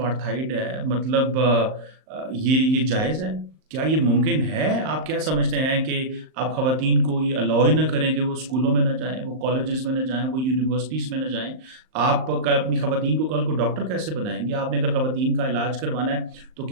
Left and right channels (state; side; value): late; left; 38 ms